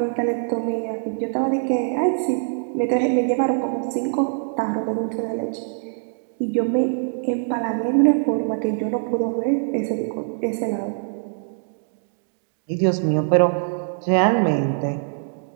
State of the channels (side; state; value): left; silent; digital silence